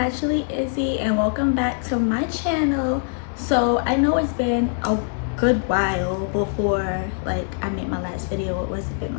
Izzy, and welcome back to my channel. So I know it's been a good while before I made my last video. It was been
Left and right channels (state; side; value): silent; right; digital silence